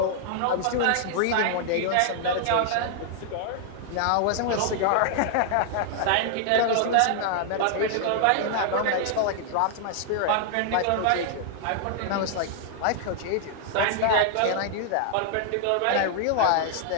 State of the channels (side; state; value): both; different; correlation -0.01